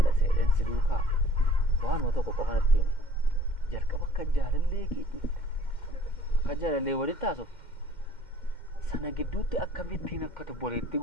dhasee si duukaa waanuma tokko qofa natti hima. Jalqaba akka jaalallee keetiitti akka jaalallee walitti haasoftu sana gidduutti akkamittiin akka tobboleetti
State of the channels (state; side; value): late; right; 2.1 ms